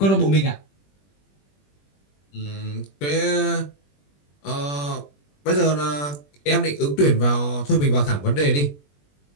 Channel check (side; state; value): right; late; 21 ms